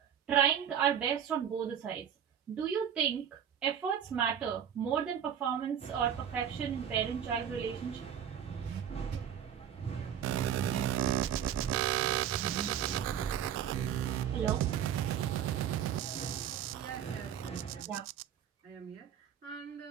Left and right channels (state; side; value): quieter; left; 9.1 dB